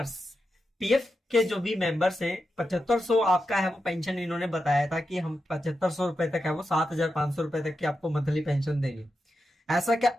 पीएफ के जो भी मेंबर्स हैं 7500 आपका है वो पेंशन इन्होंने बताया था कि हम 7500 रुपए तक है वो 7500 रुपए तक की आपको मंथली पेंशन देंगे। ऐसा क्या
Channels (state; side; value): normal; both; correlation 0.88